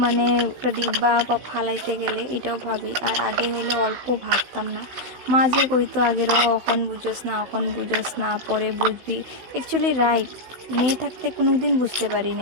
মানে একটা ডিব্বা বা ফালাইতে গেলে এটাও ভাবি। আর আগে হইলে অল্প ভাবতাম না। মা যে কইতো আগেরও এখন বুঝোস না, এখন বুঝোস না, পরে বুঝবি, অ্যাকচুয়ালি রাইট। মেয়ে থাকতে কোনো দিন বুঝতে পারি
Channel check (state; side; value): late; left; 16 ms